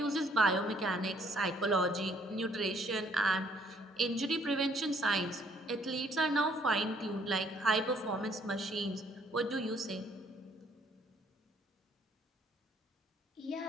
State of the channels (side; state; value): both; normal; correlation 0.64